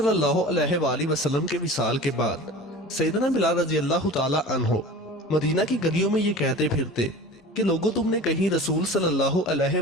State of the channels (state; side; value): normal; both; correlation 0.37